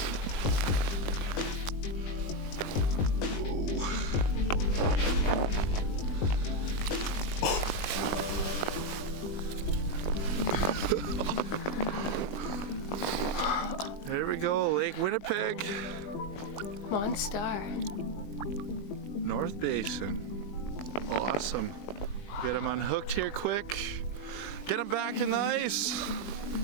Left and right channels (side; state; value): right; late; 20 ms